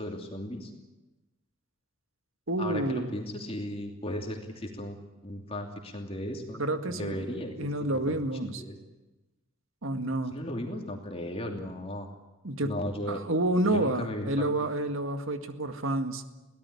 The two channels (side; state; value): both; normal; correlation 0.26